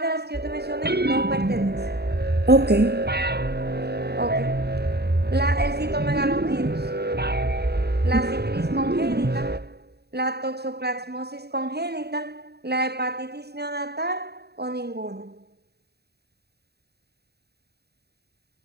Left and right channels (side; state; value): left; late; 0.48 ms